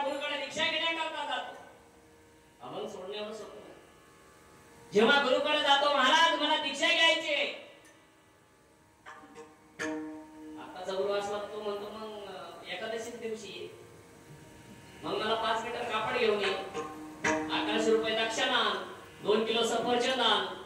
गुरुकडे दीक्षा घेण्याकरता जातो, अभंग सोडण्यावर सोडतो. जेव्हा गुरुकडे जातो, महाराज मला दीक्षा घ्यायची आहे, आताचा गुरु असला तो म्हणतो मग एकादशी दिवशी मग मला 5 मीटर कापड घेऊन ये, 1100 रुपये दक्षिणा, 2 किलो सफरचंद आण,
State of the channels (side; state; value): both; identical; correlation 1.00